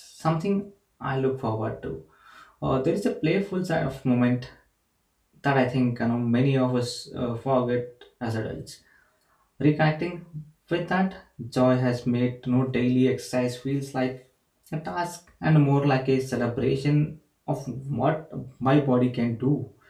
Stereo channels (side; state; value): both; identical; correlation 1.00